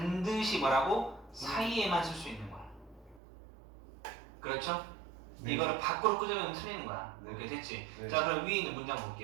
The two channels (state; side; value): drops out; left; at 3.2 s